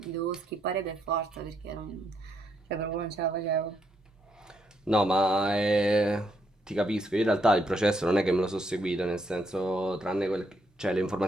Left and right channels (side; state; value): both; normal; correlation 0.76